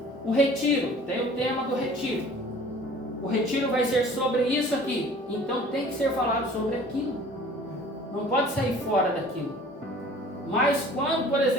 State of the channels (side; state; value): both; normal; correlation 0.48